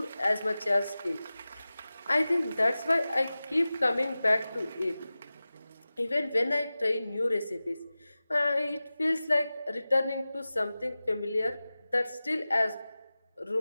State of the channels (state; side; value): inverted; both; correlation -0.96